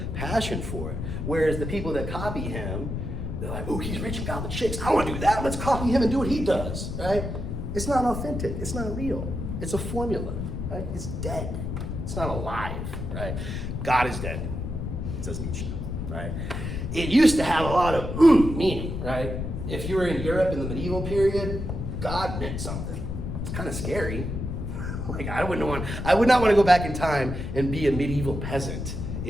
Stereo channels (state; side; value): noise; left; rumble, 4 dB below the sound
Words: passion for it. Whereas the people that copy him, they're like, oh, he's rich and got the chicks. I want to do that. Let's copy him and do what he does, right? It's not authentic. It's not real. It's a formula, right? It's dead. It's not alive, right? God is dead, says Nietzsche, right? It used to have a lot of meaning, right? If you were in Europe in the medieval period, God meant something. It's kind of scary. I would not want to go back in time and be a medieval peasant